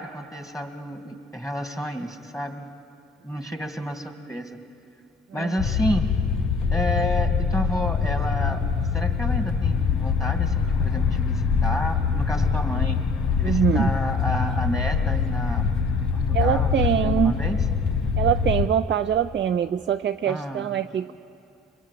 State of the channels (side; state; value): both; normal; correlation 0.48